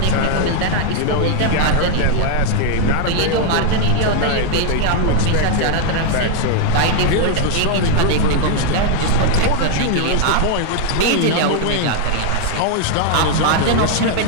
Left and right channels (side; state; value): both; different; correlation 0.00